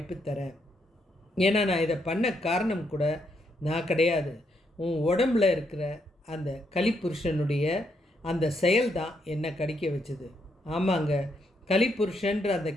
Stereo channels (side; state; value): both; normal; correlation 0.77